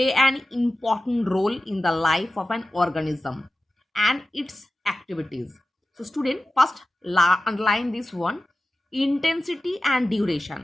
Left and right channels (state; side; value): normal; both; correlation 0.94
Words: an important role in the life of an organism and its activities. So student, first underline this one, intensity and